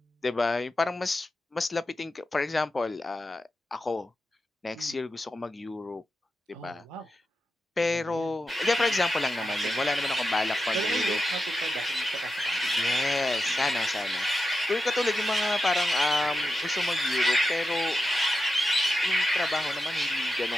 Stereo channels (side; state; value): both; normal; correlation 0.89